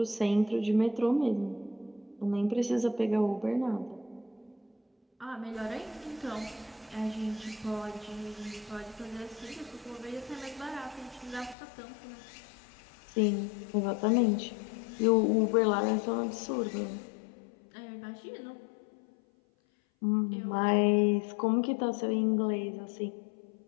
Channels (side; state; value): right; drops out; at 11.6 s